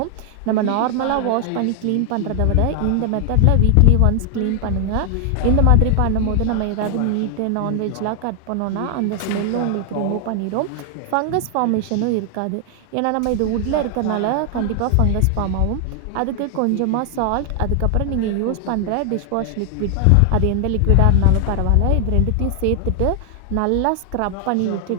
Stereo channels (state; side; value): different; both; correlation 0.00